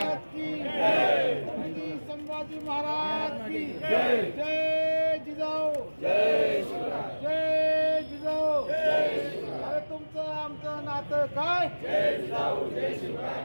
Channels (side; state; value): both; inverted; correlation -1.00